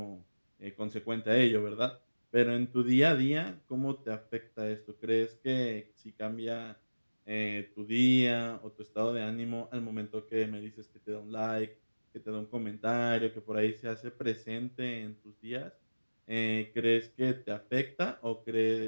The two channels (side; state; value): both; inverted; correlation -1.00